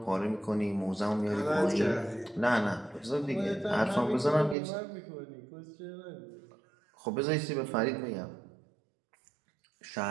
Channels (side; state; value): left; drops out; at 4.5 s